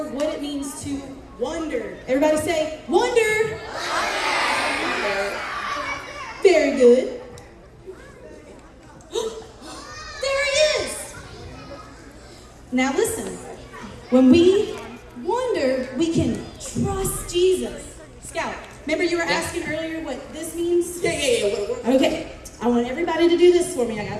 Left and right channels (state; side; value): identical; both; correlation 1.00